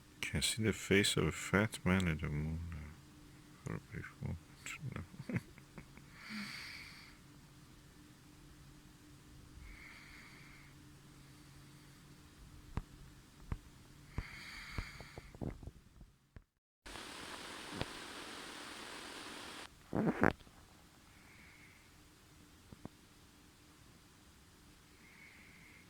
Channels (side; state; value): both; identical; correlation 1.00